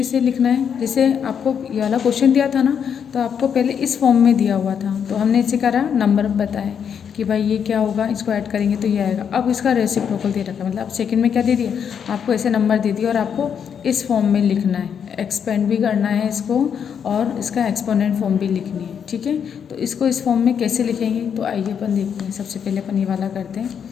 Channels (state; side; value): quieter; right; 7.6 dB